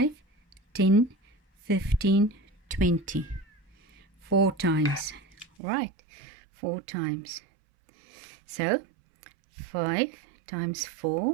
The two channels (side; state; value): left; drops out; at 5.5 s